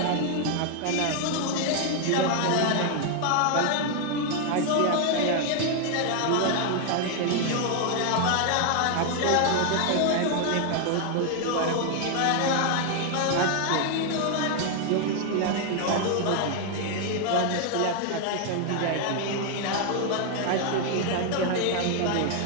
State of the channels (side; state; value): both; different; correlation 0.00